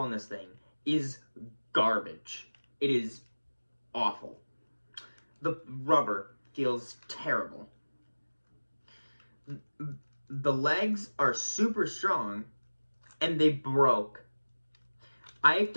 this thing is garbage. It is awful. The rubber feels terrible. The legs are super strong, and they broke. I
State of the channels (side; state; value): both; inverted; correlation -1.00